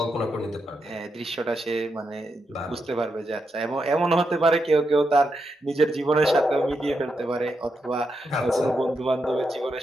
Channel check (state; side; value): normal; both; correlation 0.84